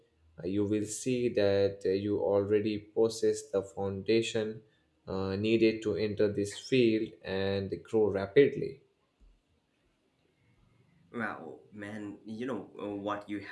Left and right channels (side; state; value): both; identical; correlation 1.00